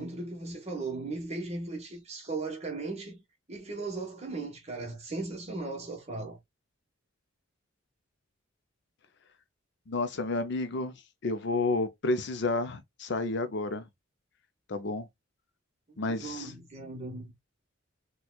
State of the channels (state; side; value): normal; both; correlation 0.19